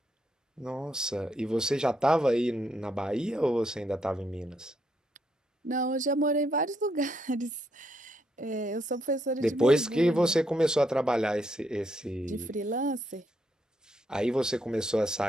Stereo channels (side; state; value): both; normal; correlation 0.76